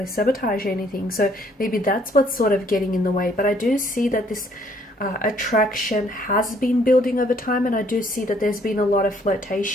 sabotage anything. So maybe that's what's sort of getting in the way. But I do see that this attraction has been building over time, and I do see that there's been a lot of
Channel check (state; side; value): normal; both; correlation 0.64